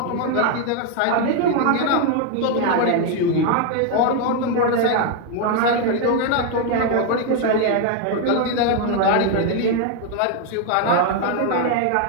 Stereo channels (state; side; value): different; both; correlation 0.01